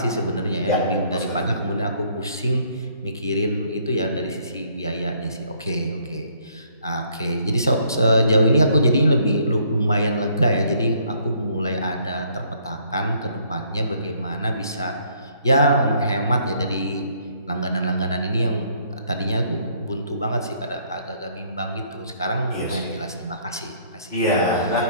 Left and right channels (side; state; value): both; inverted; correlation -0.65